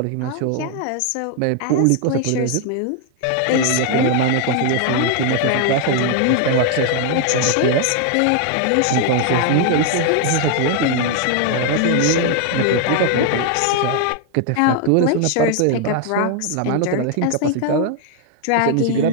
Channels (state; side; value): different; both; correlation 0.00